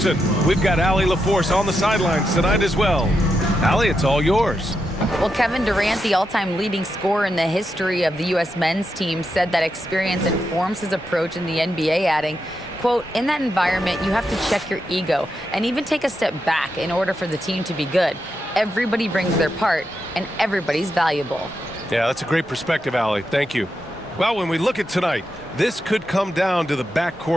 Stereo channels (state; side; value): normal; both; correlation 0.85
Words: We've got Allie LaForce on the sidelines tonight as well. Allie, it's all yours. Well, Kevin Durant, the all-time leading scorer in the history of the U.S. men's team, said that experience informs his approach in the NBA, adding, quote, "In that environment, you have to check your ego and even take a step back in order for the team to be good. Everybody brings their part, and everybody's valuable." Yeah, that's a great perspective, Allie. Thank you. Well, when we look at tonight, this could come down to the